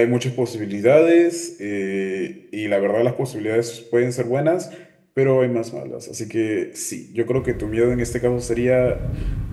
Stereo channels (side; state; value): both; identical; correlation 1.00